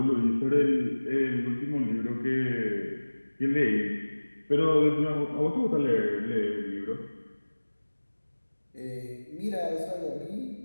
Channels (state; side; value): inverted; both; correlation -1.00